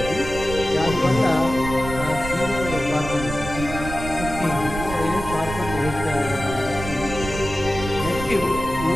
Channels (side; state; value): right; noise; rumble, 8 dB below the sound